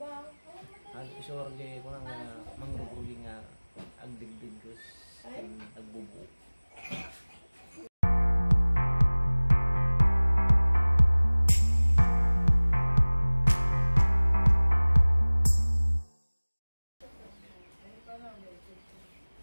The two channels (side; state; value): both; inverted; correlation -1.00